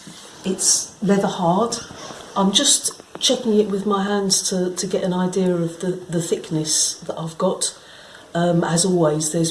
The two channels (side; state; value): both; identical; correlation 1.00